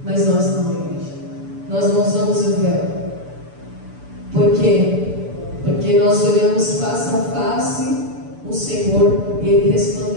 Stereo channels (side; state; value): left; late; 6.9 ms